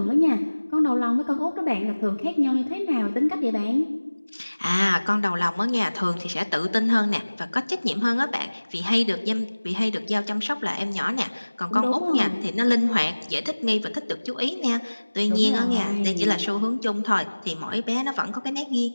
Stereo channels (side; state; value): both; inverted; correlation -1.00